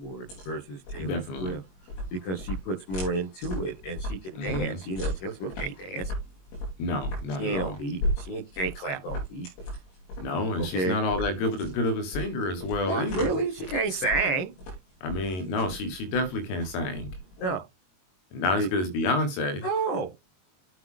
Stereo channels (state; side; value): late; right; 21 ms